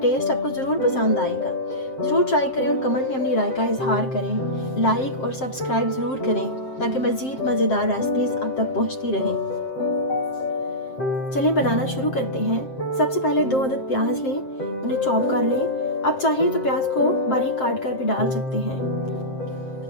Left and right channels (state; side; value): late; right; 7.6 ms